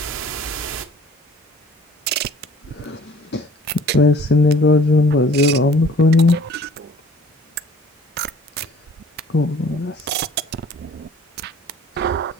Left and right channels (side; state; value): both; normal; correlation 0.52